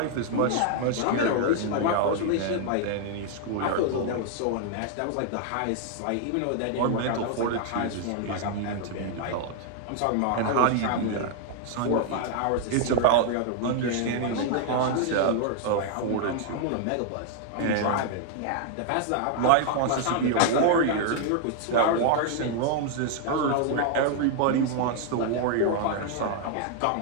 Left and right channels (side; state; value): both; different; correlation 0.00